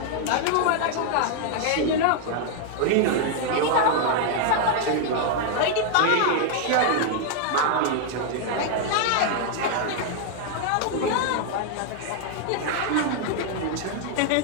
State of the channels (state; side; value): different; both; correlation 0.00